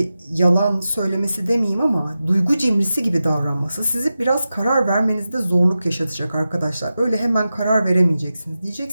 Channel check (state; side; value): inverted; both; correlation -0.92